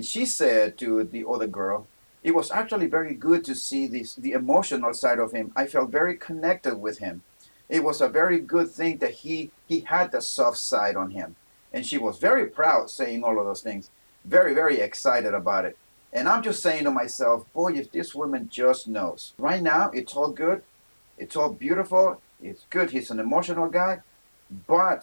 she said to the other girl, it was actually very good to see the emotional side of him. I felt very connected with him. It was a very good thing that he had the soft side on him. And she was very proud saying all of those things, very, very excited about it. And I'm just saying to myself, boy, if this woman just knows. Right now, it's all good. It's all beautiful. It's good. He's an emotional guy.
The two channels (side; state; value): both; inverted; correlation -1.00